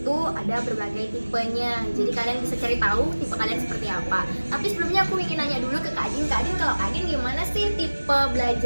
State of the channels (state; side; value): inverted; both; correlation -1.00